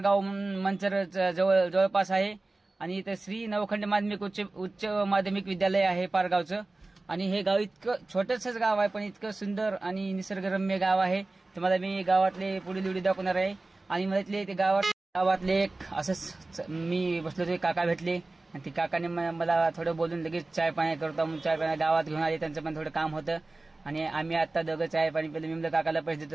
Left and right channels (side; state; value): left; quieter; 3.1 dB